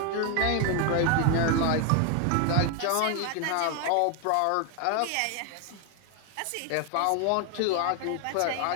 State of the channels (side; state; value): both; different; correlation 0.01